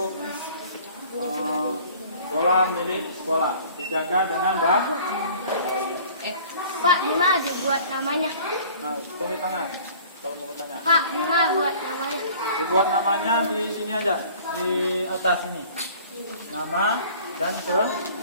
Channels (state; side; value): inverted; both; correlation -0.49